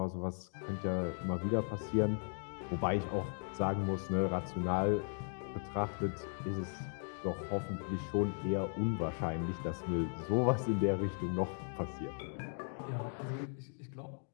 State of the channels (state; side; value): silent; right; 53 dB below the other